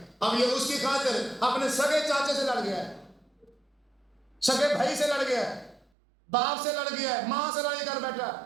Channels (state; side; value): drops out; left; at 5.9 s